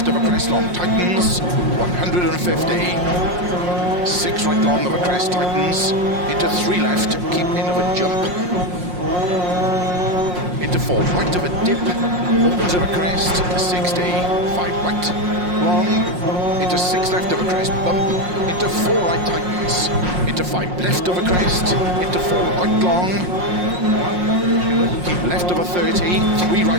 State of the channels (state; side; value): late; left; 5.6 ms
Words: of a crest long, tightens, 150. 6 right long of a crest, tightens, into 3 left, keep in of a jump, into 4 right of a dip, opens of a crest, 60, 5 right long, into 6 left of a crest, bump, into 4 right tightens, into 5 left of a crest, into 4 right long, keep left of a 30, 3